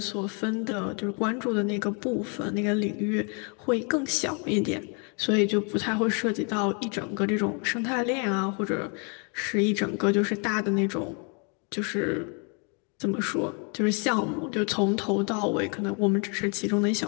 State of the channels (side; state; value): right; quieter; 36.8 dB